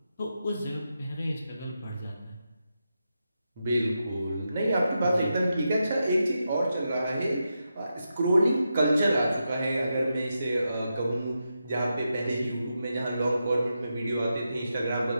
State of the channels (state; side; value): inverted; both; correlation -0.87